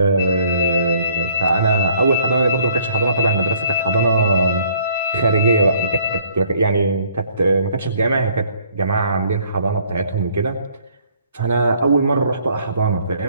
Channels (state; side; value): inverted; both; correlation -0.61